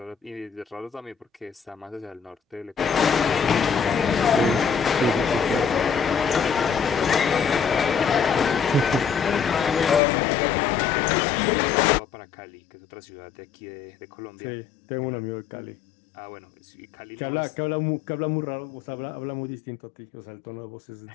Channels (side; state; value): right; drops out; at 10.0 s